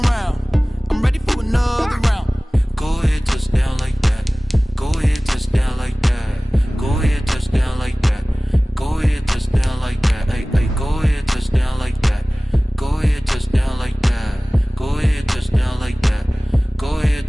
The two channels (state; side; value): normal; both; correlation 0.98